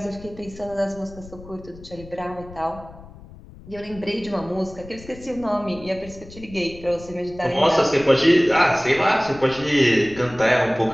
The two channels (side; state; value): left; noise; rumble, 18 dB below the sound